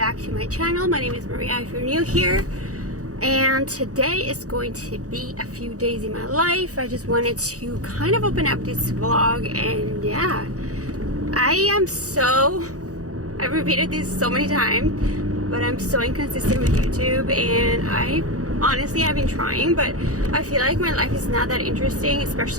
to my channel. My name is Maria if you're new here, and today is going to be a few days in my life. I just wanted to kind of open up this vlog, and yeah, I've repeated this so many times, but I'm so inconsistent with YouTube, and I've been trying, but I feel like my life is not that interesting,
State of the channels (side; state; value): left; late; 0.66 ms